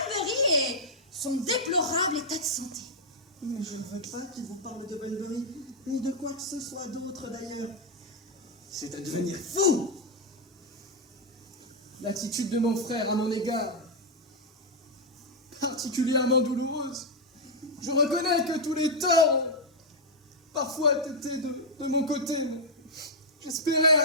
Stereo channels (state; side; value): normal; both; correlation -0.02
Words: et son déplorable état de santé. Mais je ne veux pas qu'il vous parle de Bunbury, ni de quoi que ce soit d'autre d'ailleurs. C'est à devenir fou! L'attitude de mon frère à mon égard, particulièrement douloureuse. Je reconnais que tous les torts ont parfois été de mon côté, mais j'espérais